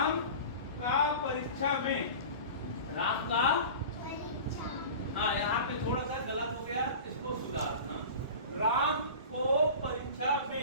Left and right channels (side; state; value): both; inverted; correlation -0.35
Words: का परीक्षा में, राम का, हाँ यहाँ पे थोड़ा सा गलत हो गया, इसको सुधारना। राम को परीक्षा